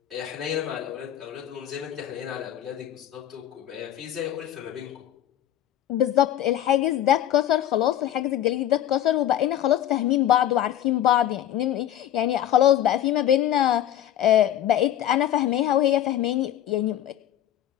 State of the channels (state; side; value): quieter; right; 11.5 dB